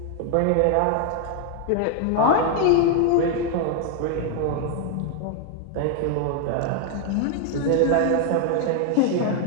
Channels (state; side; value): different; both; correlation 0.00